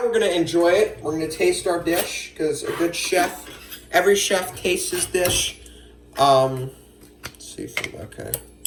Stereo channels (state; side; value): identical; both; correlation 1.00